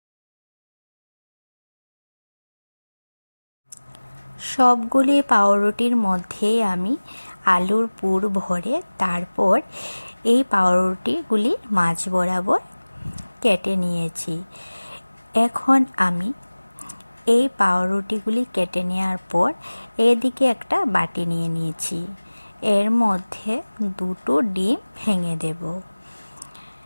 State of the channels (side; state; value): both; inverted; correlation -1.00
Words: সবগুলি পাউরুটির মধ্যে আমি আলুর পুর ভরে তারপর এই পাউরুটিগুলি মাঝ বরাবর কেটে নিয়েছি। এখন আমি এই পাউরুটিগুলি কেটে নেওয়ার পর এদিকে একটা বাটি নিয়ে নিয়েছি। এর মধ্যে দুটো ডিম ভেঙে দেব।